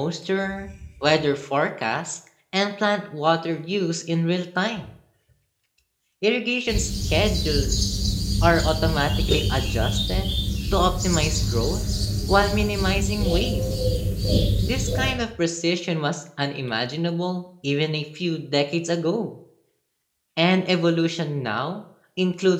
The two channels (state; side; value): identical; both; correlation 1.00